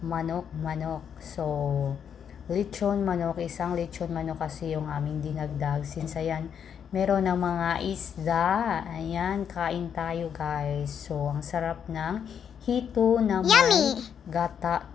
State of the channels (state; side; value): quieter; right; 8.0 dB